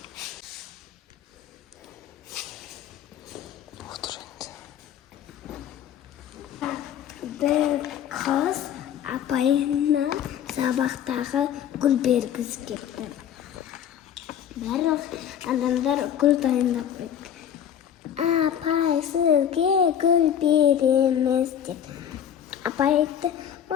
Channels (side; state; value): right; quieter; 9.4 dB